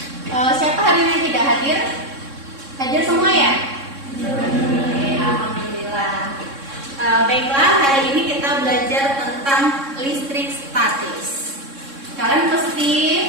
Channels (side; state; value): left; late; 3.6 ms